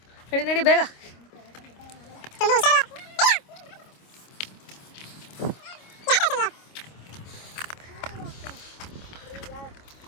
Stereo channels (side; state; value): right; late; 26 ms